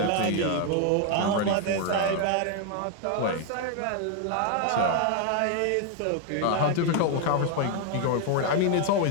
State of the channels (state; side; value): different; both; correlation 0.01